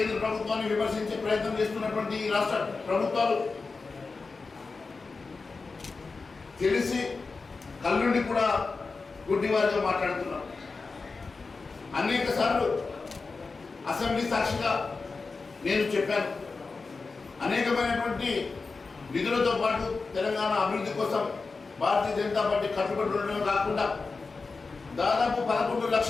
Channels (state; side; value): quieter; right; 4.2 dB